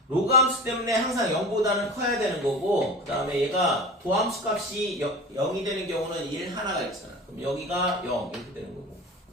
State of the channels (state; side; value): normal; both; correlation 0.34